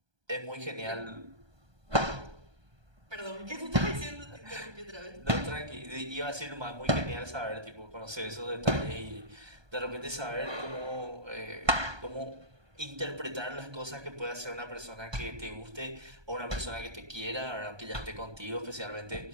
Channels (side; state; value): left; late; 1.2 ms